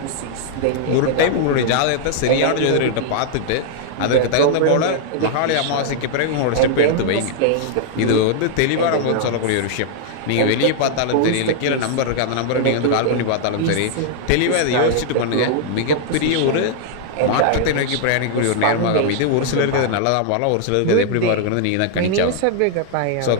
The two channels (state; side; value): different; both; correlation -0.01